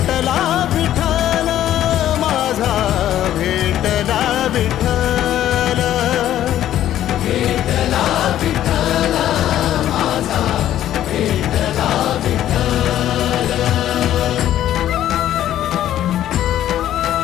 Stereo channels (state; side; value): quieter; right; 12.1 dB